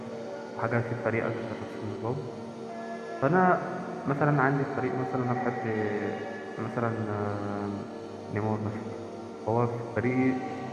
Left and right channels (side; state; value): both; identical; correlation 1.00